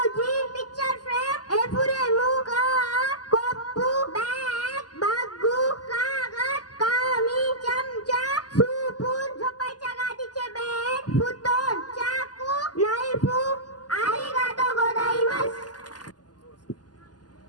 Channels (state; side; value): late; right; 0.69 ms